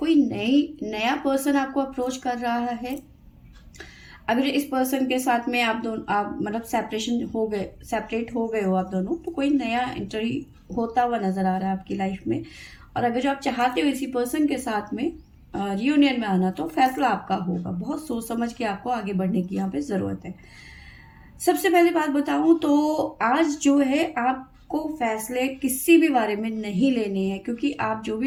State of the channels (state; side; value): identical; both; correlation 1.00